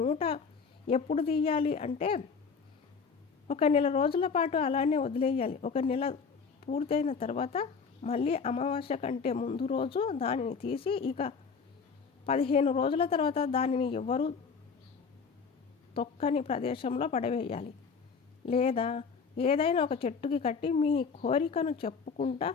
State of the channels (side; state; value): right; quieter; 5.5 dB